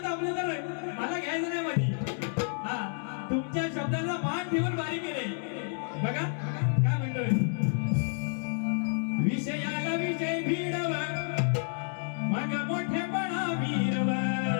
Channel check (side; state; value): right; silent; 57 dB below the other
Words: दाबले तर मला घ्यायचं नाही मध्ये. तुमच्या शब्दाचा मान ठेवून बारी केले. बघा काय म्हणतोय. विषयाला विषय भिडव मग मोठेपणा वीरव.